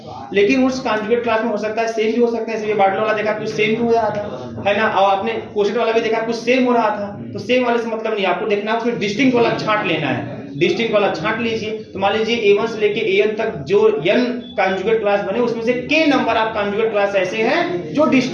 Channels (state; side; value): identical; both; correlation 1.00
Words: लेकिन उस कॉन्जुगेट क्लास में हो सकता है सेम भी हो सकता है, इसलिए बाटलो वाला देखा कुछ सेम भी हो रहा था, है ना, और आपने कोशेट वाला भी देखा कुछ सेम हो रहा था। तो सेम वाले से मतलब नहीं, आपको देखना है फिर डिस्टिंक्ट वाला छांट लेना है, डिस्टिंक्ट वाला छांट लीजिए। तो मान लीजिए A1 से लेके AN तक जो n कॉन्जुगेट क्लास बने, उसमें से k नंबर आप कॉन्जुगेट क्लास ऐसे हैं जो